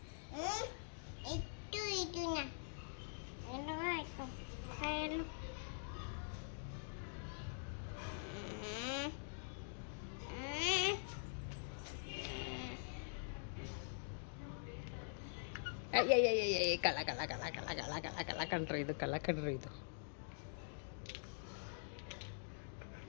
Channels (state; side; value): silent; right; digital silence